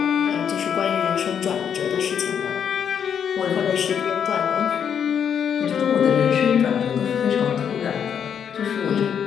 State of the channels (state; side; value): quieter; right; 8.0 dB